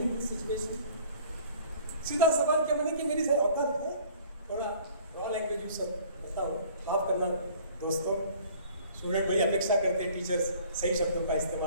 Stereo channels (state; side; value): inverted; both; correlation -0.51